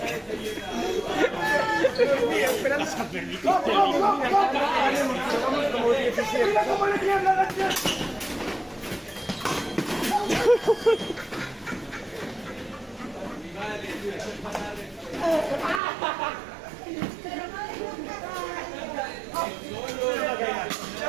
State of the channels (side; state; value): left; drops out; at 15.8 s